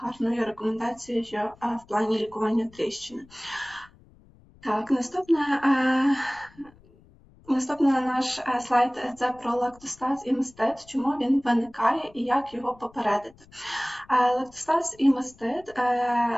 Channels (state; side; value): noise; left; rumble, 27 dB below the sound